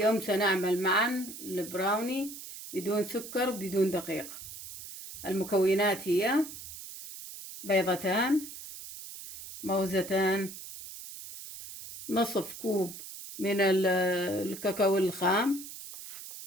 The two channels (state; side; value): noise; right; hiss, 12 dB below the sound